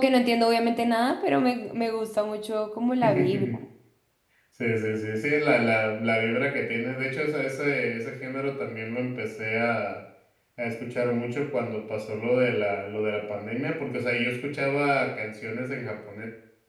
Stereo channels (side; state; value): both; identical; correlation 1.00